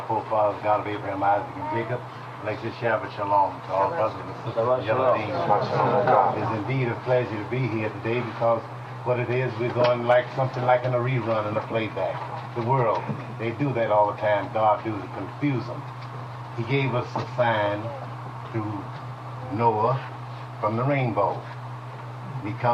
forefathers, God of Abraham, Isaac, and Jacob, like this Shabbat Shalom to all brothers and sisters. It's indeed a pleasure to be here today because what it is, we're going like something like in a rerun and a playback. The world, they do that all the time. God do to confuse them. He gave us a sign through Noah from the rainbow. He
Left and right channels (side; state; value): both; identical; correlation 1.00